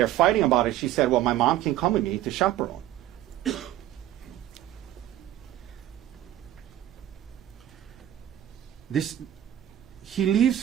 fighting about it, she said, well, my mom can come with me to chaperone. He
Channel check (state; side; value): quieter; left; 12.7 dB